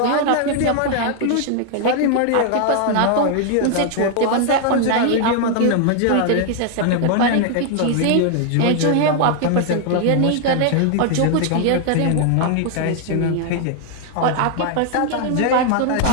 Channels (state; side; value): different; both; correlation 0.00